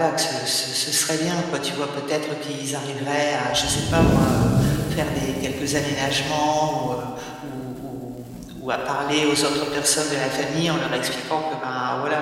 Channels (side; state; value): both; identical; correlation 1.00